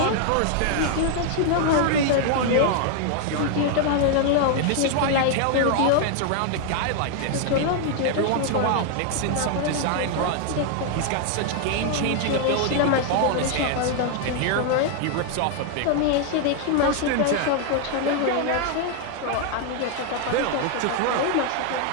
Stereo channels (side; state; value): both; different; correlation 0.00